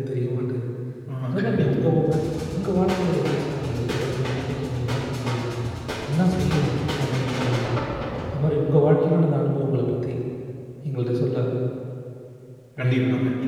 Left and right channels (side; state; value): both; identical; correlation 1.00